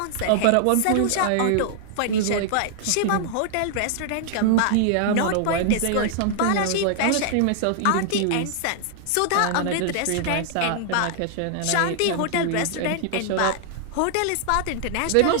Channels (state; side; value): different; both; correlation 0.00